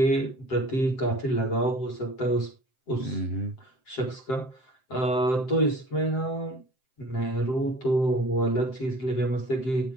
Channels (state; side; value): late; right; 7.7 ms